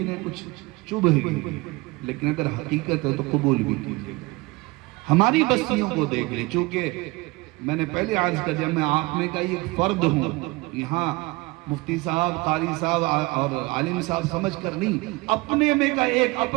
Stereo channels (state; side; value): quieter; left; 23.3 dB